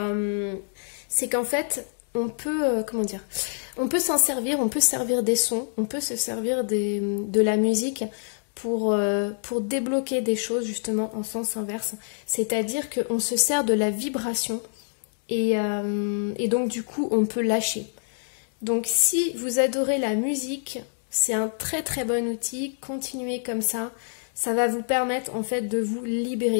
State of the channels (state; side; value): silent; right; digital silence